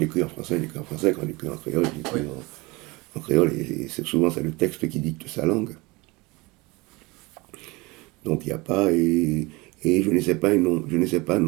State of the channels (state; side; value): quieter; left; 24.0 dB